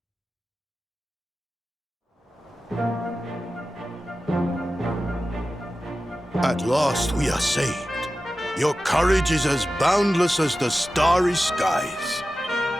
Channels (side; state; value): both; normal; correlation 0.94